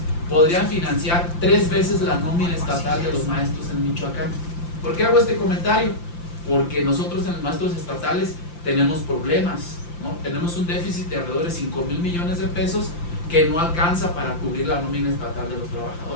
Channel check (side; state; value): right; late; 5.8 ms